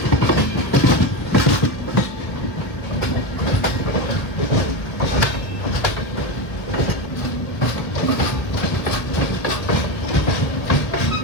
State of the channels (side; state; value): right; late; 1.2 ms